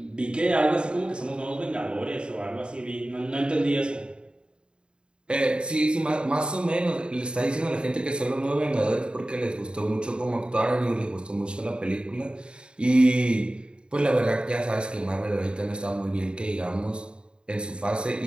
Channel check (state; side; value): late; left; 0.052 ms